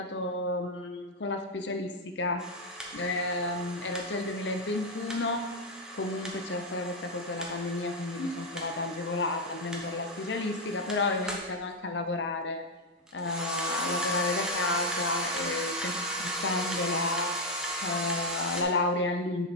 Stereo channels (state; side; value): normal; both; correlation 0.03